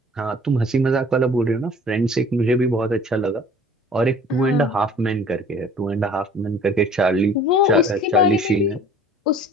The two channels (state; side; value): normal; both; correlation 0.49